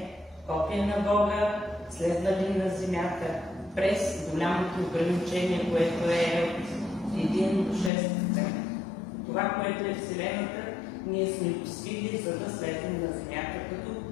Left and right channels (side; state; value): right; drops out; at 7.9 s